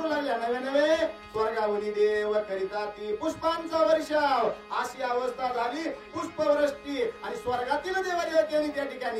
लागल्या. नवे नवे स्वर्गावनी देव करिता ती पुष्पांचा वर्षाव अशी अवस्था झाली. पुष्पवृष्टी आणि स्वर्गातील देवदेवतेने त्या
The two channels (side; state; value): both; identical; correlation 1.00